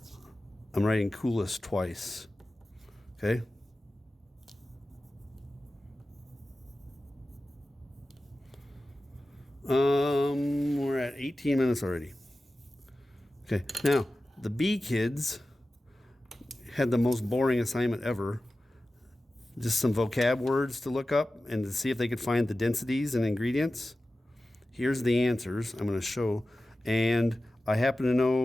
I'm writing coolest twice. Okay? We're at 18 minutes already. Okay, now the B kids had the most boring assignment ever. Just some vocab words to look up and to see if they could find the densities and ingredients. Here's the answers I'm going to show. And I happen to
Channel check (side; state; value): both; normal; correlation 0.95